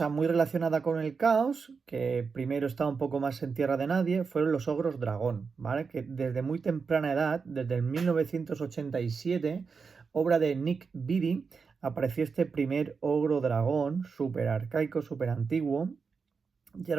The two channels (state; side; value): quieter; left; 5.2 dB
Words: muy relacionada con el caos, que primero estaba un poco más en tierra de nadie, fueron los ogros dragón, ¿vale? Que desde muy temprana edad, desde el 1987, obra de Nick Beatty, apareció este primer ogro dragón, súper arcaico, súper antiguo, y